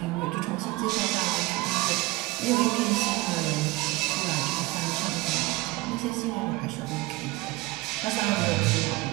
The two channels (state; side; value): quieter; left; 21.1 dB